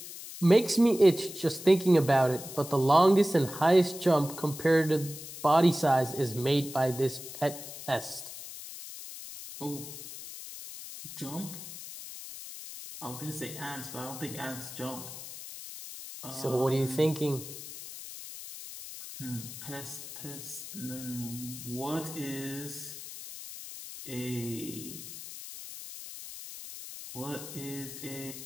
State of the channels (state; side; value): noise; left; hiss, 11 dB below the sound